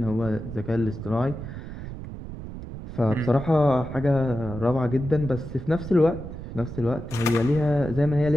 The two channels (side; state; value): right; noise; rumble, 10 dB below the sound